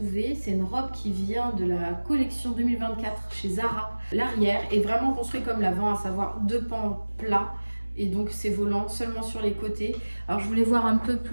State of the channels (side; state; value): both; inverted; correlation -1.00